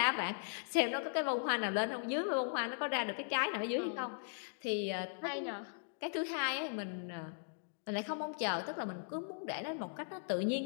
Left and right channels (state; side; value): silent; right; digital silence